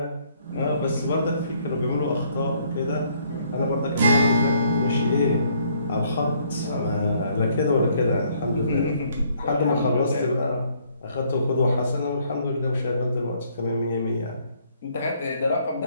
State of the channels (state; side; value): inverted; both; correlation -0.66